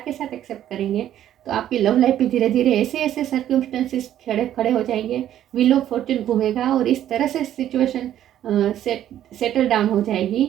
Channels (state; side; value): quieter; left; 11.5 dB